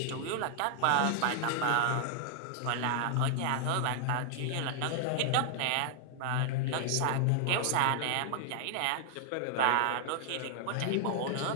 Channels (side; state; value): both; different; correlation 0.00